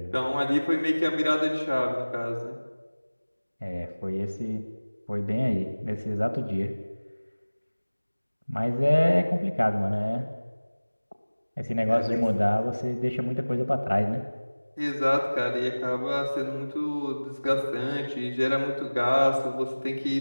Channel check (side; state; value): both; inverted; correlation -1.00